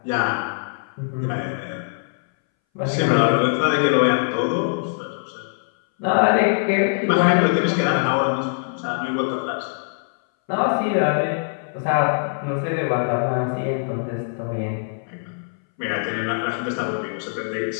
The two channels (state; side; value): silent; right; 61 dB below the other